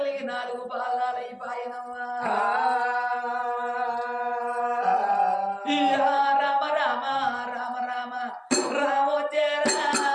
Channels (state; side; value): identical; both; correlation 1.00